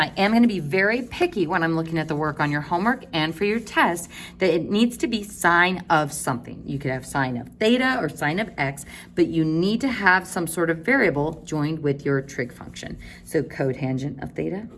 am going to be very picky when I'm looking at the work on your homework and for your test, that it needs to be sine of something. You could have sine of theta or sine of x, but you need to have some sort of variable joined with your trig function. So cotangent of theta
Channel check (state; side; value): identical; both; correlation 1.00